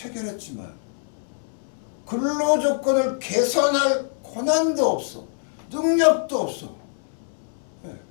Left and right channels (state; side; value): silent; right; 62 dB below the other